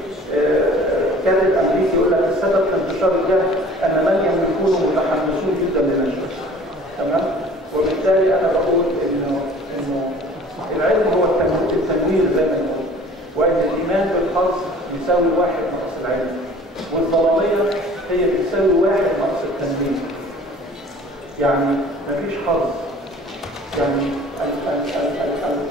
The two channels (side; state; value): both; normal; correlation 0.48